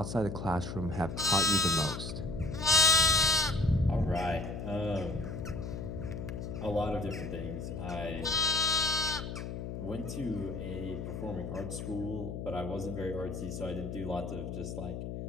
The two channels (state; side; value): noise; left; hum, 6 dB below the sound